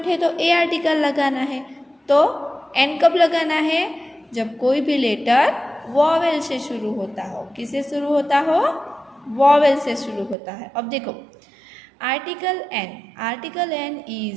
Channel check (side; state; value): left; drops out; at 10.4 s